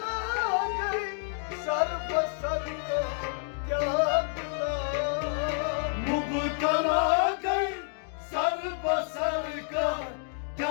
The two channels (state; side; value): silent; right; 58 dB below the other